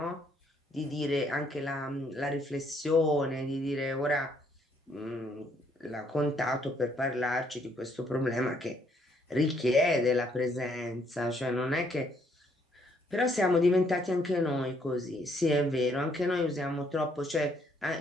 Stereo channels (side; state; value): both; normal; correlation 0.69